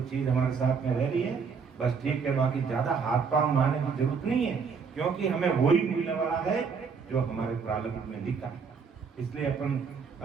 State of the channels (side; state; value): left; quieter; 5.7 dB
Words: चीज हमारे साथ में रह रही है बस ठीक है, बाकी ज्यादा हाथ पांव मारने की जरूरत नहीं है, क्योंकि हमें वही मिलने वाला है जो हमारे प्रारब्ध में लिखा है। इसलिए अपन